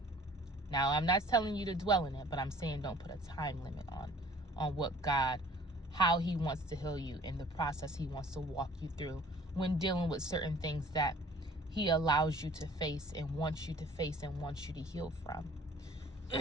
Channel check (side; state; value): both; normal; correlation 0.52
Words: Now, I'm not telling you to dwell in it, but I'm saying don't put a time limit on what God, how he wants to heal you, in the process he wants to walk you through when dealing with certain things that he allows you to face and wants you to face and wants you to heal from.